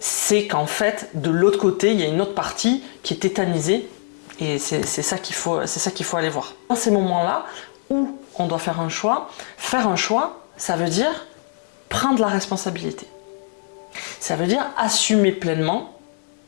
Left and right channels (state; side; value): silent; right; 64 dB below the other